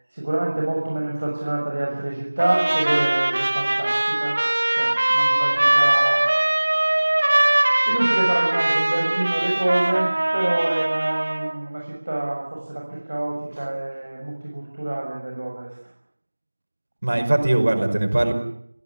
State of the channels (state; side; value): inverted; both; correlation -1.00